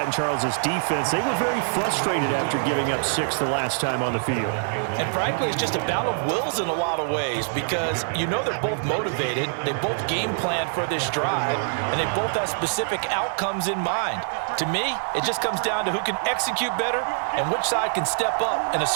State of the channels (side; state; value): left; silent; digital silence